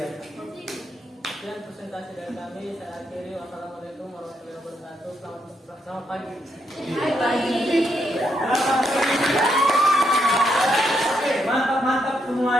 Sekian presentasi dari kami. Saya akhiri. Wassalamualaikum warahmatullahi wabarakatuh. Selamat pagi. Oke, mantap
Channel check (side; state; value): both; normal; correlation 0.78